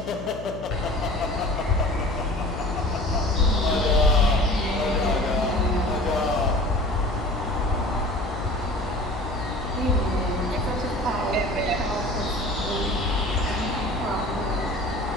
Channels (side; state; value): left; noise; hum, 12 dB below the sound